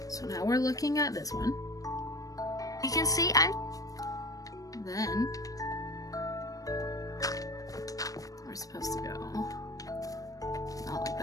so now we're looking at this one. You can see I'm... Then we're supposed to go not like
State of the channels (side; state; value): right; late; 0.17 ms